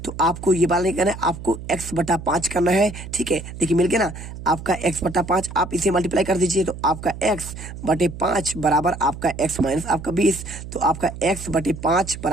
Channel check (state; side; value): noise; right; hum, 11 dB below the sound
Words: तो आपको ये बात नहीं करना है, आपको x/5 करना है। ठीक है, देखिए मिल गया ना आपका x/5। आप इसे मल्टीप्लाई कर दीजिए तो आपका x/5 बराबर आपका x माइनस आपका 20। तो आपका x/5